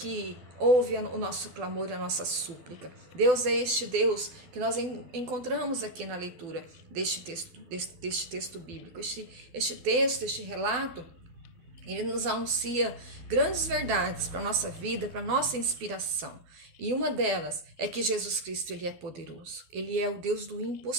ouve o nosso clamor, a nossa súplica. Deus é este Deus que nós encontramos aqui na leitura deste texto bíblico. Este relato, ele nos anuncia grandes verdades para a nossa vida, para a nossa inspiração. E uma delas é que Jesus Cristo, ele é poderoso. Ele é o Deus do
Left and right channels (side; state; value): left; late; 12 ms